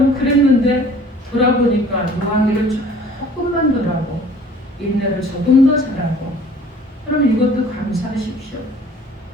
그랬는데 돌아보니까 노하기를 조금만 더 하고 인내를 조금 더 잘하고 그럼 이것도 감사하십시오.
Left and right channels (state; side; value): normal; both; correlation 0.51